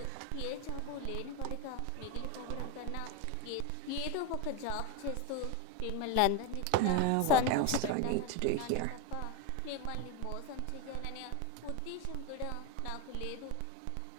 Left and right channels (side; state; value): both; different; correlation 0.02